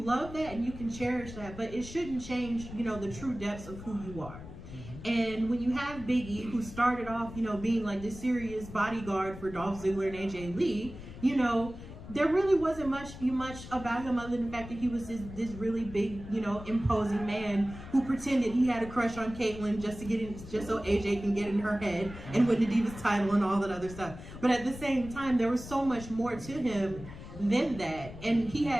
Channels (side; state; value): left; noise; rumble, 13 dB below the sound